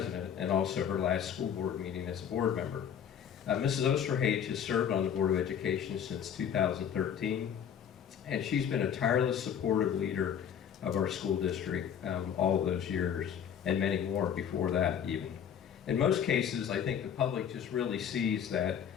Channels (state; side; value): quieter; right; 8.5 dB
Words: and also her last school board meeting as a board member. Mrs. Osterhage has served on the Board of Education since 2013, and she's been a tireless, supportive leader of our school district all of those years, and many more before that even. In most cases, I think the public just really sees that